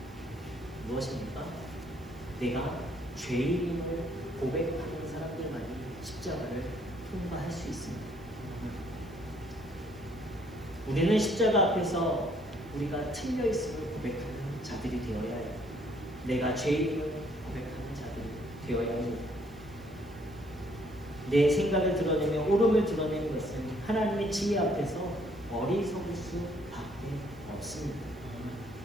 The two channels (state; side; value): noise; right; hiss, 28 dB below the sound